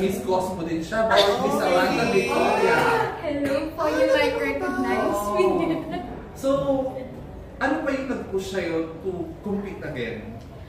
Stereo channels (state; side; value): identical; both; correlation 1.00